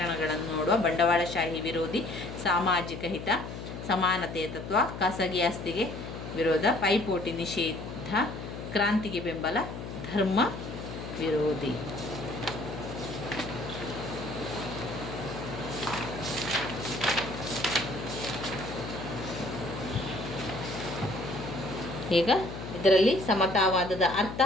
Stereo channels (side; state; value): left; noise; hum, 9 dB below the sound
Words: ನೋಡುವ. ಬಂಡವಾಳಶಾಹಿ ವಿರೋಧಿ, ಸಾಮಾಜಿಕ ಹಿತ, ಸಮಾನತೆಯ ತತ್ವ, ಖಾಸಗಿ ಆಸ್ತಿಗೆ ವಿರೋಧ, ಪೈಪೋಟಿ ನಿಷೇಧ, ಕ್ರಾಂತಿಗೆ ಬೆಂಬಲ, ಧರ್ಮ ವಿರೋಧಿ. ಈಗ ಇದರಲ್ಲಿ ಸಮತಾವಾದದ ಅರ್ಥ